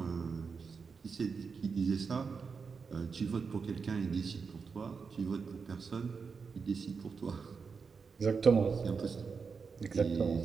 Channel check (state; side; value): quieter; left; 5.3 dB